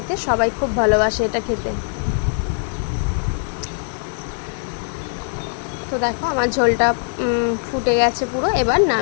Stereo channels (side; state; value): right; silent; 56 dB below the other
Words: সবাই খুব ভালোবাসে এটা খেতে। তো দেখো আমার ঝোলটা ফুটে গেছে পুরো, এবার